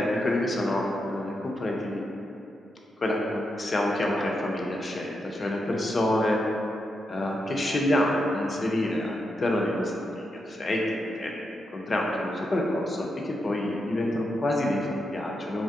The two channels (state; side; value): normal; both; correlation 0.85